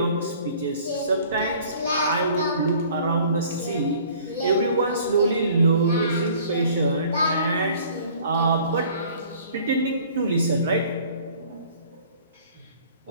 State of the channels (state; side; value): inverted; both; correlation -0.52